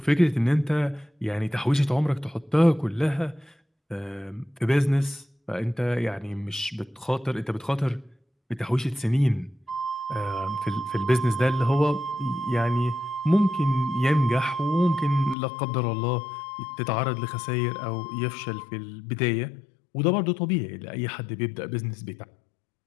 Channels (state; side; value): drops out; right; at 15.4 s